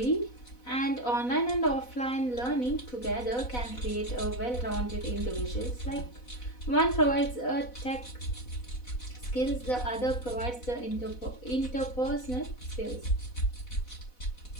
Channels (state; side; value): late; right; 4.1 ms